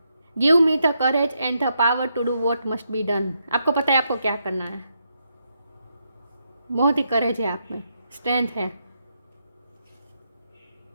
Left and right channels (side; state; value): both; inverted; correlation -0.81